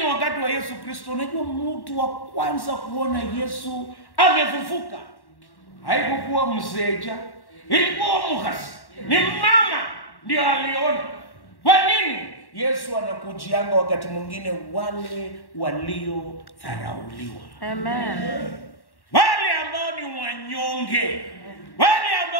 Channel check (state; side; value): late; right; 1.1 ms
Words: wakati wa Yesu Kristo, unajua mtu wa kwanza kuona Yesu amefufuka haikuwa mseja, ilikuwa Mukhasi. Ni mama ndio aliona. Kwa nini? Yesu anakujianga wakati mwingine wale waliodharauliwa. Amen. Wale ambao ni wanyonge, wale